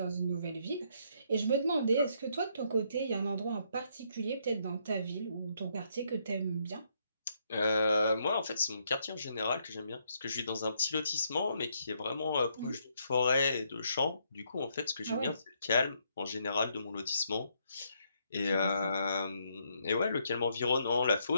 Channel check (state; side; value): inverted; both; correlation -0.73